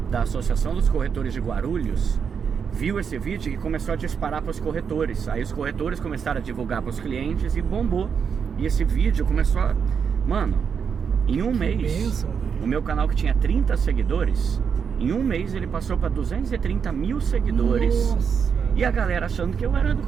da Associação dos Corretores de Guarulhos viu esse vídeo e começou a disparar para os corretores. Aí os corretores começaram a divulgar para os clientes e bombou. E esse vídeo começou a... Mano, em um mês, o meu canal que tinha 30 seguidores, em um mês ele passou para 230 mil seguidores. Nossa. E a galera achando que eu era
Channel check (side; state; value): left; quieter; 6.7 dB